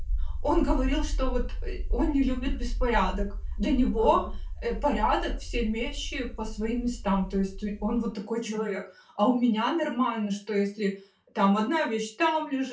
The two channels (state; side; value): identical; both; correlation 1.00